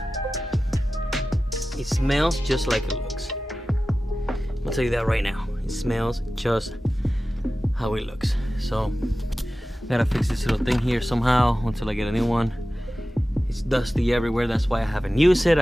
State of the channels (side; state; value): both; normal; correlation 0.95